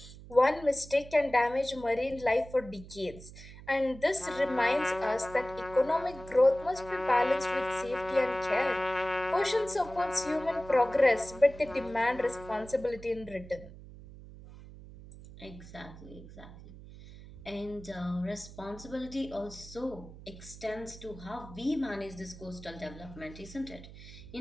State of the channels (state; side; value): noise; right; hum, 16 dB below the sound